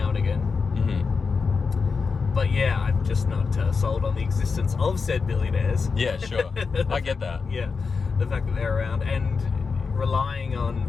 and again. Mm-hmm. But yeah, I'm just not sold on the existence of said billionaires. Yeah, sure. I get that. Yeah, the fact that they're around and relying on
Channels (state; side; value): quieter; right; 5.0 dB